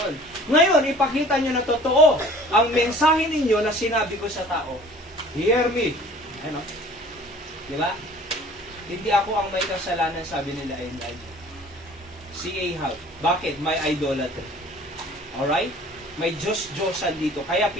Ngayon, ipakita nyo na totoo ang mensahe ninyo na sinabi ko sa tao. Hear me. Ano? Di ba? Hindi ako ang may kasalanan, sabi nila Elijah. Si Ahab. Bakit? May idolatry. Alright? May Diyos-Diyosan dito. Kaya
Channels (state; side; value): normal; both; correlation 0.48